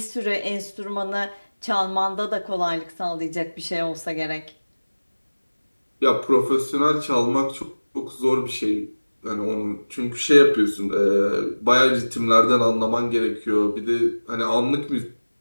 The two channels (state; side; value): inverted; both; correlation -1.00